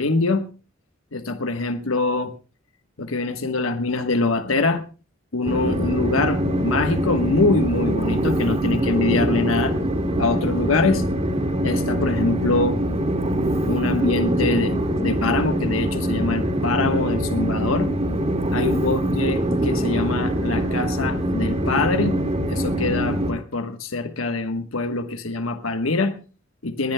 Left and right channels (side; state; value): both; normal; correlation 0.40